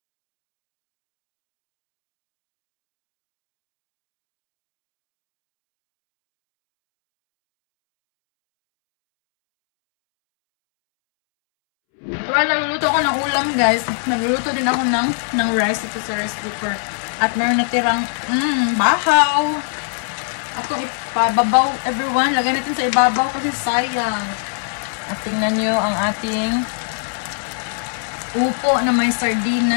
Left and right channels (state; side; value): silent; right; 66 dB below the other